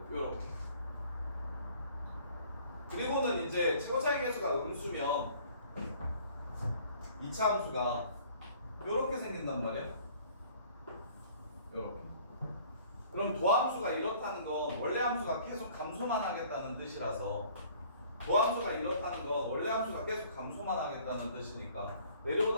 이렇게. 그리고는 이제 최고창의 개수가 음수면 2차 함수가 이렇게 생긴단 말이야. 이렇게. 그럼 도함수가 이렇다는 건 원래 함수가 계속 감소만 하겠다는 뜻이라서 도함수가 이렇다는 건 원래 함수가 계속 감소만 하겠다는 뜻이니까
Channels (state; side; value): inverted; both; correlation -0.54